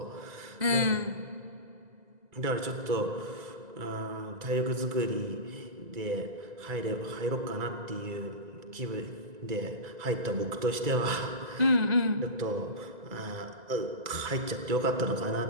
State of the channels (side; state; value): left; late; 2.0 ms